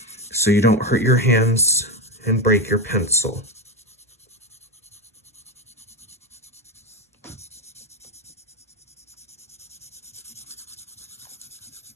so you don't hurt your hands and break your pencil.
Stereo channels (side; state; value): both; normal; correlation 0.13